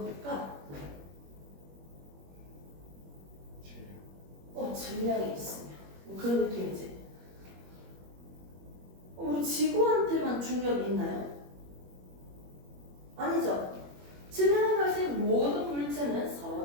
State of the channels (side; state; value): left; late; 21 ms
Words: 질량이 있으면 뭐 그런 느낌이지. 우리 지구한테만 중력이 있나요? 아니죠. 질량을 가진 모든 물체는